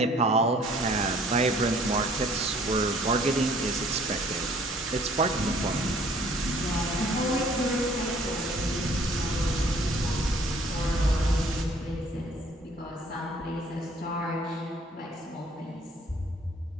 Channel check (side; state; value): both; normal; correlation 0.57